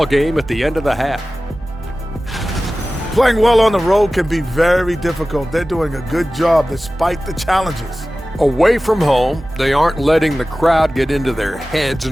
game at the end of the half. Playing well on the road can be very difficult. They're doing a good job despite the challenges. Away from home, they aren't letting the crowd get into their heads.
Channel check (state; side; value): normal; both; correlation 0.96